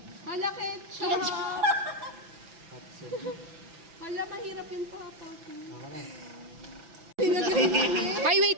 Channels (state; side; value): late; left; 5.9 ms